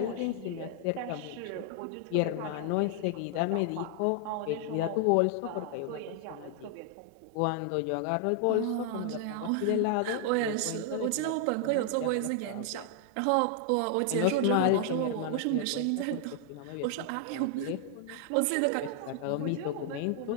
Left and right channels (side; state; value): both; different; correlation 0.00